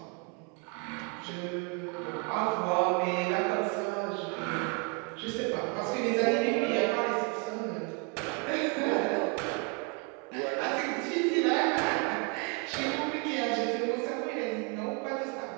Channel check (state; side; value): quieter; left; 35.1 dB